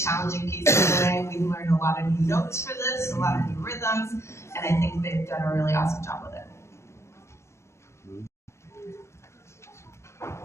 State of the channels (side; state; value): right; late; 0.13 ms